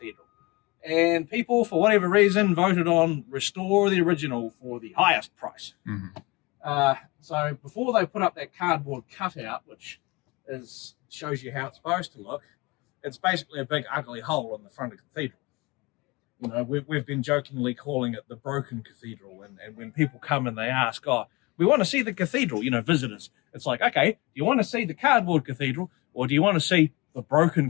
And people, for whatever reason, voted on restore the original for the highest price. So before they put up that cardboard cutout, which shows you how it's supposed to look, it's basically a big ugly hole in the front of the cathedral. You know, we've been jokingly calling it the broken cathedral. And when people come and they ask, oh, we want to see the cathedral, you know, visitors. It's like, okay, do you want to see the cardboard cathedral or do you want to see the broken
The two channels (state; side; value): quieter; right; 24.6 dB